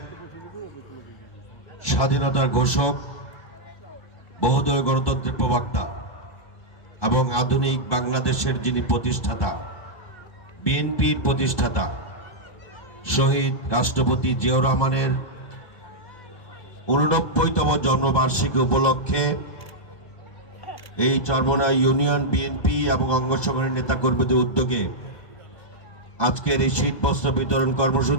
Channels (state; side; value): late; right; 2.0 ms